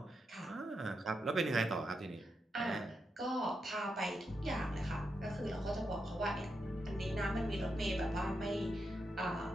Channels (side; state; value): both; normal; correlation 0.85